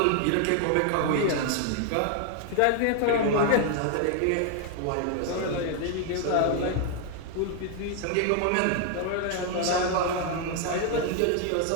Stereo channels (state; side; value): different; both; correlation 0.00